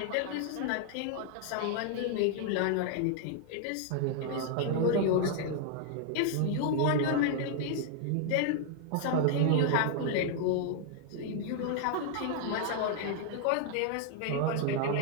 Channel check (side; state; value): both; different; correlation 0.00